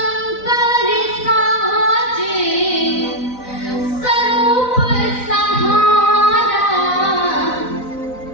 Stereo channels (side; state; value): right; late; 4.0 ms